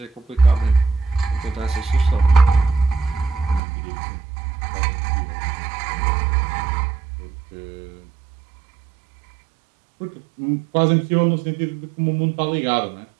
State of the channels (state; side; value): drops out; left; at 3.6 s